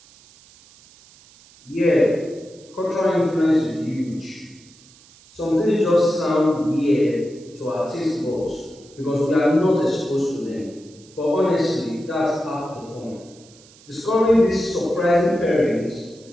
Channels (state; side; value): noise; right; hiss, 25 dB below the sound